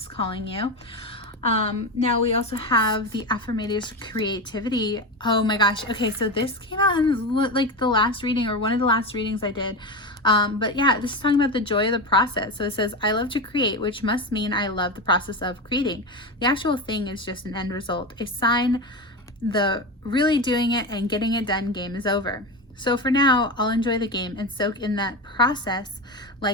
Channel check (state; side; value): normal; both; correlation 0.19